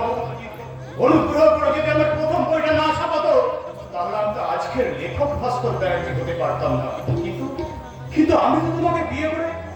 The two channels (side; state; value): both; identical; correlation 1.00